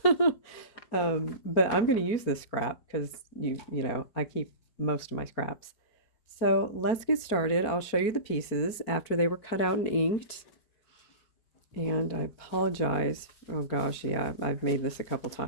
But I'm going to use this scrap because you know, I keep most of my scraps. So let's get started. I'll show you the pieces after they were cut out and inked. And I apologize. Oh gosh, yeah, I've made this a couple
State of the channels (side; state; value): right; late; 4.4 ms